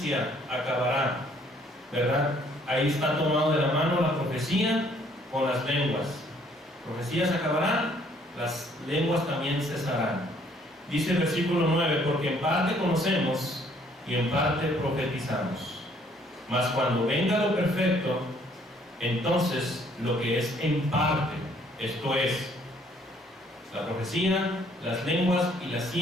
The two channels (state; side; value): normal; both; correlation 0.63